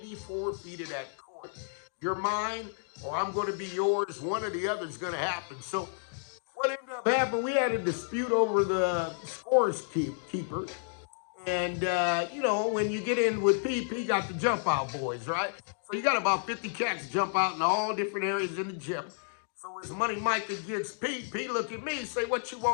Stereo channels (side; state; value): right; silent; digital silence